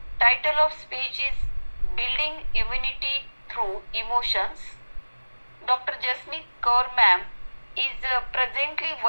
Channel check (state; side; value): inverted; both; correlation -1.00